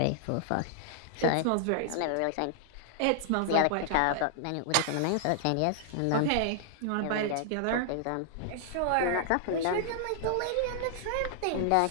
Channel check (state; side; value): different; both; correlation -0.01